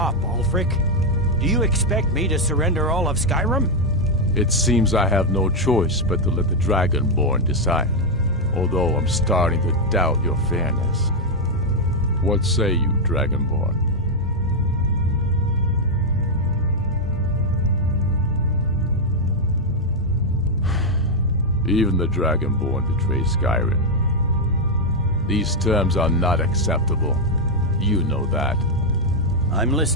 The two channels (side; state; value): both; normal; correlation 0.01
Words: Ulfric? Do you expect me to surrender all of Skyrim? It seems I have no choice but to let the Dragonborn decide, although I'm starting to doubt your fairness. What say you, Dragonborn? Even the Dragonborn betray Skyrim. These terms are not acceptable. You know that. I'm